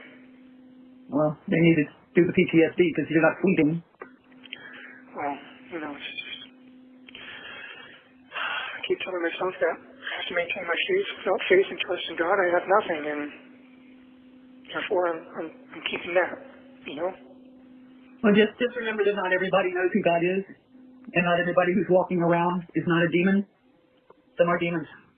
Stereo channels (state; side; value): identical; both; correlation 1.00